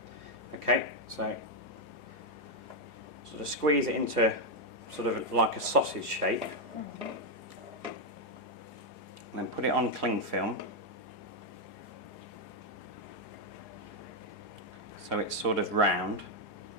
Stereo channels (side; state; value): right; late; 4.8 ms